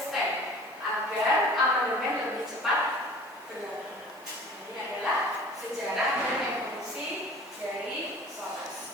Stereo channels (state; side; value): normal; both; correlation 0.45